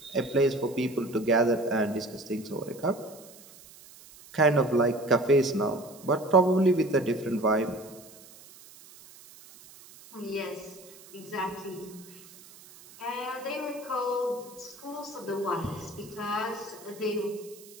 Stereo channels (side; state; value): right; noise; hiss, 21 dB below the sound